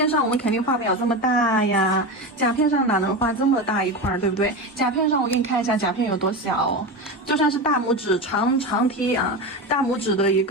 上我们肯定画不了这么大呀，甲片上哪能画这么大一块，对不对？甲片上我给你看一下甲片有多小，就算是大拇指长梯啊，大拇指的一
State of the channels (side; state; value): both; normal; correlation 0.21